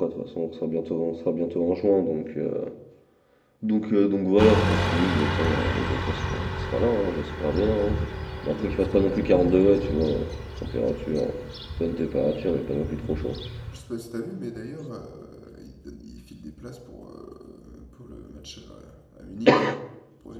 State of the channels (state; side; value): identical; both; correlation 1.00